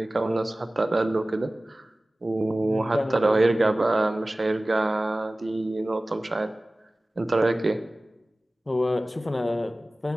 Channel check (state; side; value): normal; both; correlation 0.98